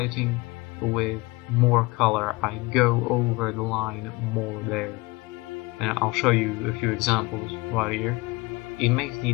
with more color. I go over the line more there. And I'll show you a few examples right here. It makes the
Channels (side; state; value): right; quieter; 23.7 dB